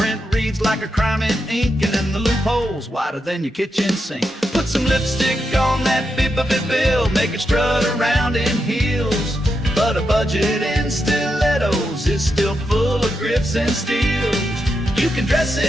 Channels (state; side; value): normal; both; correlation 0.85